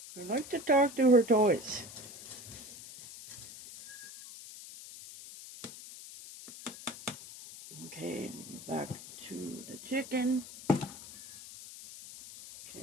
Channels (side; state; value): left; noise; hiss, 14 dB below the sound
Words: I like to talk to her toys. Okay, back to the chicken. Okay,